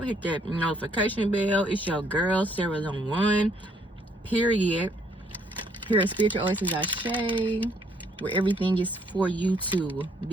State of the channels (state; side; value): normal; both; correlation 0.67